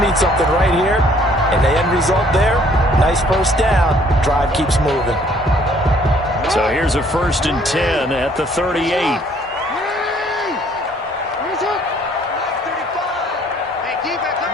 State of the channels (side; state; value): both; normal; correlation 0.61